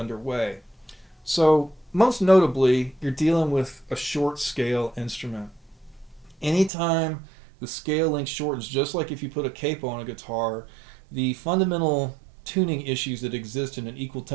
So most notably, you're dealing with a short scale instrument. Anytime the scale length shortens, just like if you put a capo on a guitar, the fundamental tuning issues that exist in an equal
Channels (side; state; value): left; drops out; at 6.7 s